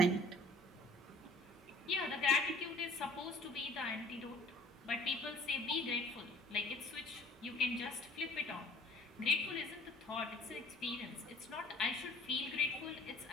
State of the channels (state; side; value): normal; both; correlation 0.52